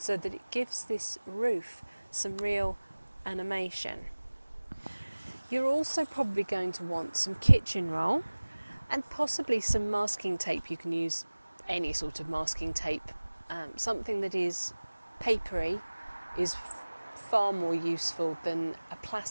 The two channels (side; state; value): both; inverted; correlation -1.00